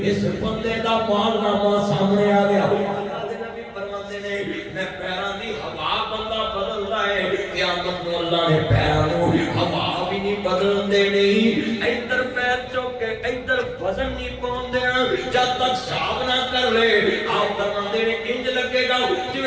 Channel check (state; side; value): identical; both; correlation 1.00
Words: اس بندے دا مالنامہ سامنے آ گیا اللہ دے نبی فرماتے نے میں پیران دی ہوا بندہ بدل رہا ہے قیامت نو اللہ نے پیران نو ہوا بھی نہیں بدل دے نہیں ادھر پیر چوک کے ادھر وزن نہیں پہن دینا جب تک صاحب نہ کر لے آپ فرماتے نے انج لگے گا